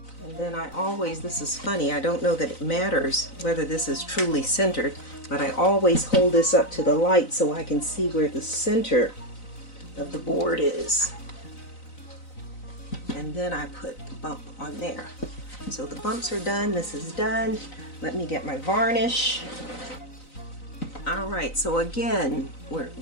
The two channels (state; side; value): late; right; 3.9 ms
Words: then I always, this is funny, I don't know that it matters whether this is truly centered, but I always hold this up to the light so I can see where the center of the board is. And then I put the bump on there. So the bumps are done, this is done. Let me get my varnish. All right, so again,